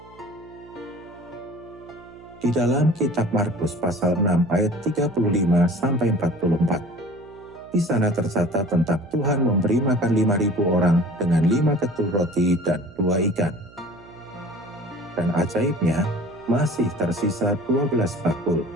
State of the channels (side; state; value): right; noise; hum, 23 dB below the sound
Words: Di dalam kitab Markus pasal 6 ayat 35-44, di sana tercatat tentang Tuhan memberi makan 5.000 orang dengan 5 ketul roti dan 2 ikan. Dan ajaibnya, masih tersisa 12 bakul.